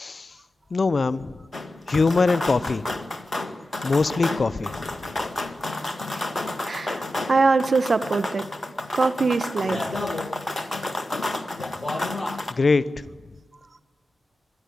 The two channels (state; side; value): normal; both; correlation 0.91